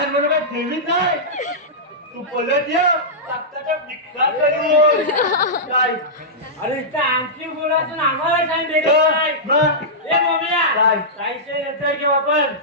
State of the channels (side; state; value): both; normal; correlation -0.13